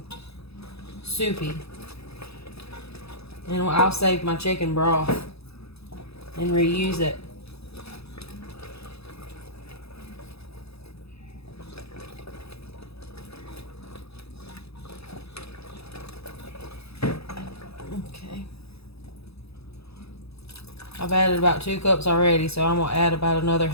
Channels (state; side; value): late; right; 0.78 ms